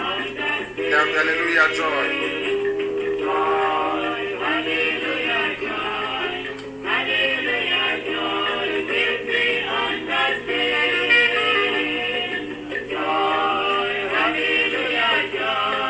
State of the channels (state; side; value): identical; both; correlation 1.00